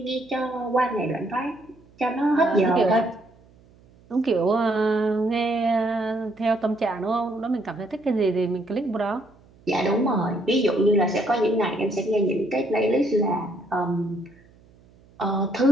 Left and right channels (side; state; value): right; noise; hum, 28 dB below the sound